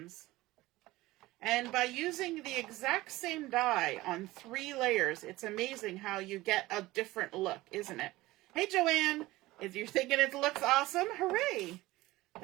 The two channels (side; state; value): left; quieter; 18.6 dB